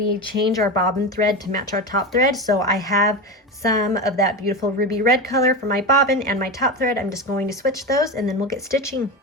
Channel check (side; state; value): both; normal; correlation 0.21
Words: change our bobbin thread to match our top thread. So I have some of that beautiful ruby red color for my bobbin and my top thread. I'm just going to switch those and then we'll get stitching.